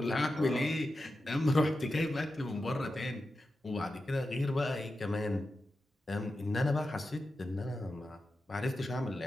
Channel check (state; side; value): normal; both; correlation 0.91